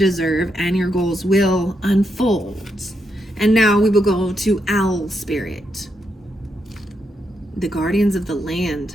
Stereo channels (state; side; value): normal; both; correlation 0.81